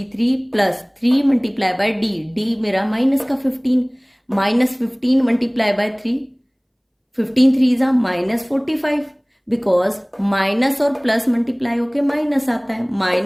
+ 3 मल्टीप्लाई बाय d, d मेरा माइनस का 15, -15 मल्टीप्लाई बाय 3, 15 3 -45, बिकॉज माइनस और प्लस मल्टीप्लाई होके माइनस आता है।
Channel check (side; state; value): both; identical; correlation 1.00